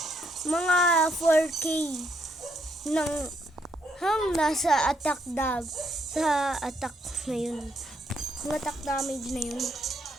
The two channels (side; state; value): both; normal; correlation 0.74